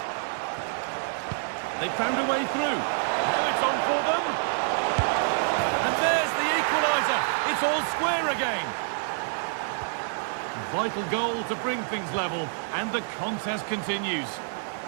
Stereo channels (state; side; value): silent; left; digital silence